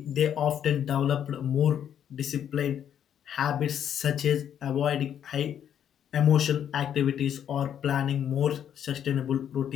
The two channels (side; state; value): right; quieter; 9.4 dB